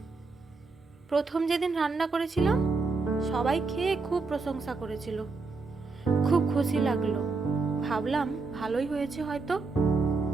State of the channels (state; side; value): quieter; left; 4.1 dB